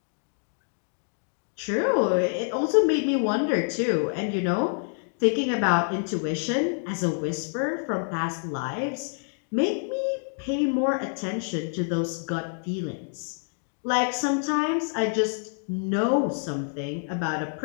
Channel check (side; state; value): right; silent; 60 dB below the other